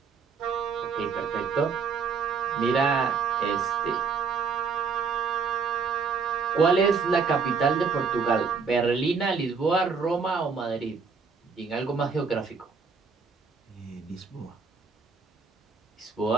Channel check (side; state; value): left; quieter; 5.2 dB